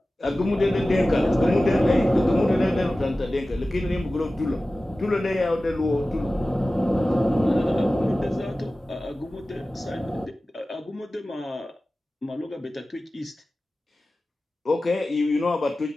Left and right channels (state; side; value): normal; both; correlation 0.96